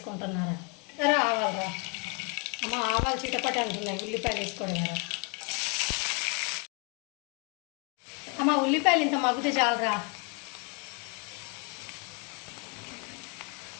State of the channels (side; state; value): right; quieter; 32.2 dB